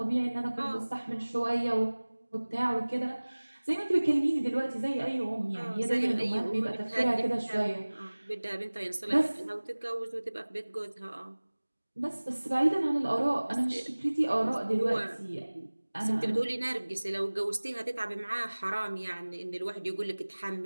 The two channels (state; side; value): inverted; both; correlation -1.00